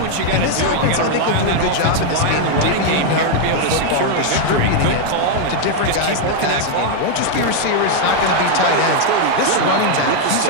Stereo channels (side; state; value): both; different; correlation 0.00